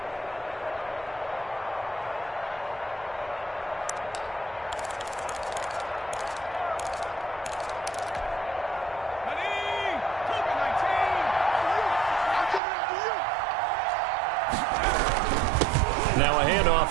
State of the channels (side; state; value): left; drops out; at 12.6 s